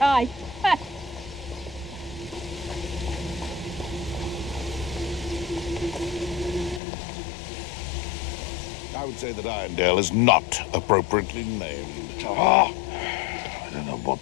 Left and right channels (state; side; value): drops out; right; at 6.8 s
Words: I would say that Irondale is not appropriately named. I don't know what